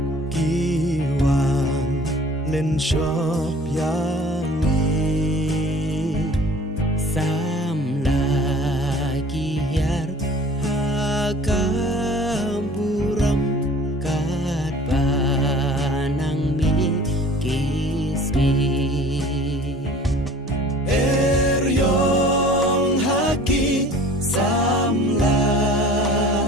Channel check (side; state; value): both; normal; correlation 0.48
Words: kiwan len shop yangi sam lagi hiar hakampuram kat panang mi kismi eryong haki samla